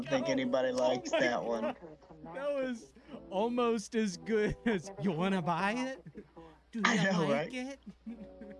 think psycho. anybody likes my that one. That was almost as good as you wanna buy it? Do you I know, like right? it?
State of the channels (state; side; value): identical; both; correlation 1.00